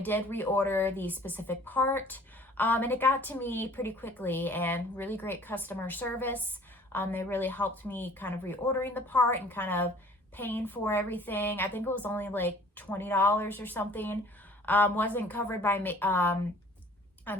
reorder the specific part, and it got to me pretty quickly, and really great customer service. They really helped me kind of reordering the part and kind of paying for everything. I think it was only like $20 or something. Wasn't covered by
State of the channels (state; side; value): normal; both; correlation 0.52